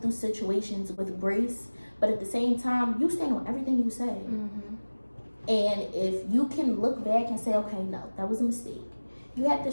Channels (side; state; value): both; inverted; correlation -1.00